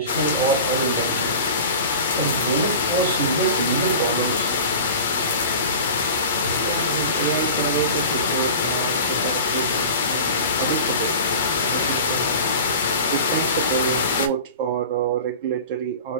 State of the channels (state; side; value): inverted; both; correlation -0.36